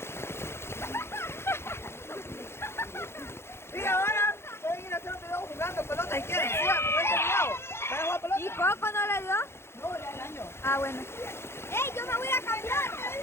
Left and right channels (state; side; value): late; right; 0.12 ms